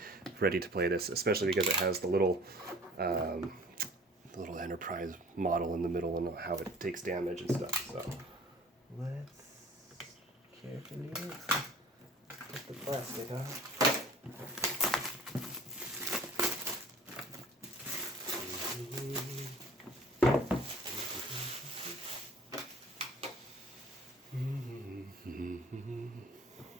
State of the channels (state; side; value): normal; both; correlation 0.48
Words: ready to play this, especially because it has the little Enterprise model in the middle and how it takes damage and stuff. So let's carefully get the plastic off.